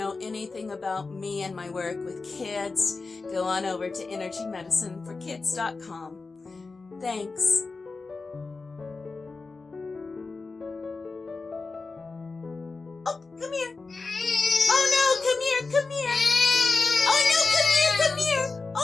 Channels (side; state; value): right; quieter; 4.0 dB